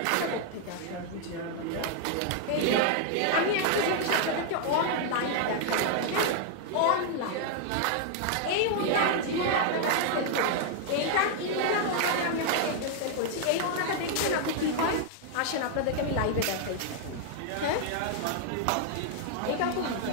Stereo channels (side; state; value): both; different; correlation 0.00